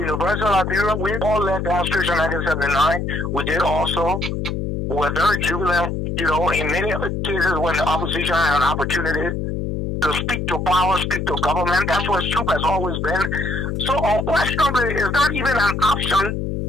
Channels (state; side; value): noise; left; hum, 2 dB below the sound